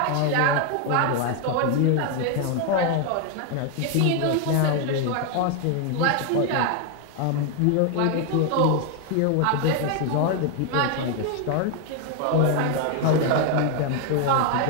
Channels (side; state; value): both; different; correlation 0.01